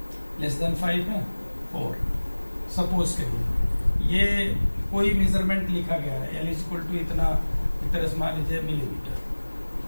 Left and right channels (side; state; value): both; inverted; correlation -1.00